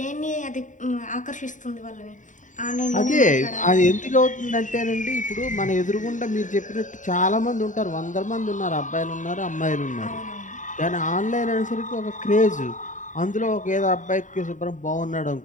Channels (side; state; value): right; late; 0.36 ms